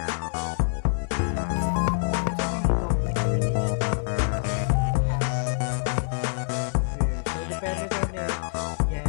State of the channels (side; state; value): right; silent; 61 dB below the other